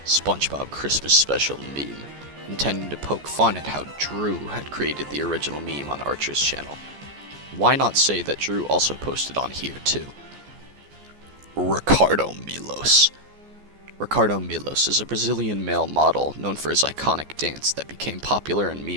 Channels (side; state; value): left; late; 14 ms